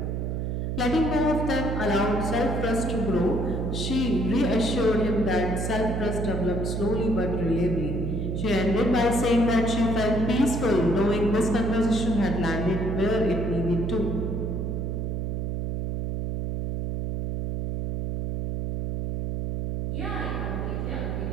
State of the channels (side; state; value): right; noise; hum, 2 dB below the sound